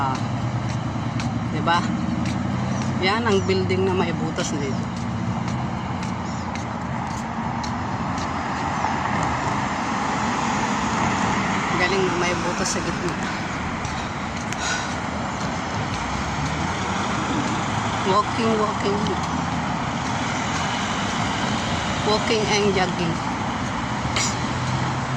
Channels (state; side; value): identical; both; correlation 1.00